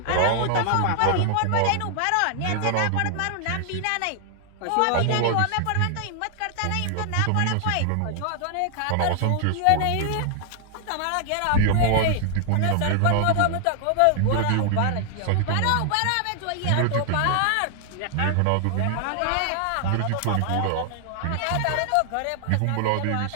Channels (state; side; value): different; both; correlation 0.00